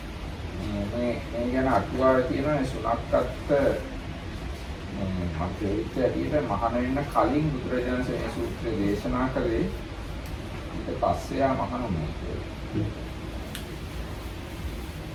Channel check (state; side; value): identical; both; correlation 1.00